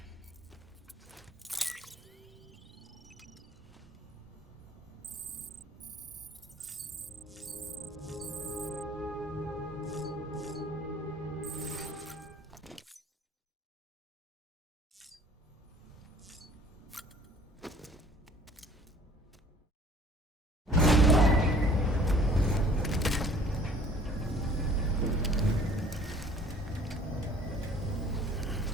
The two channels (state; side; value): normal; both; correlation 0.53